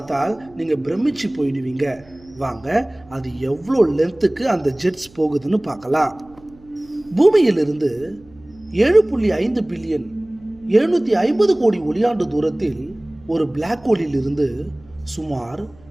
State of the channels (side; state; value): right; noise; hum, 26 dB below the sound